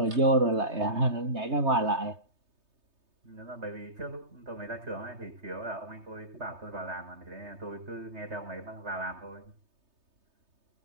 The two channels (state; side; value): late; left; 3.2 ms